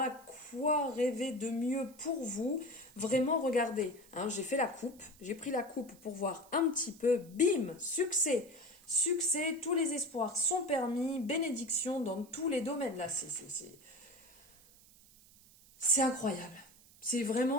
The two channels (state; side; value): noise; right; hiss, 25 dB below the sound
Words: quoi rêver de mieux pour vous? Vraiment, regardez, hein, j'ai fait la coupe, j'ai pris la coupe pour voir un petit peu, bim, succès. Succès, tous les espoirs sont permis, bénédiction dans tous les domaines. Là, c'est incroyable. C'est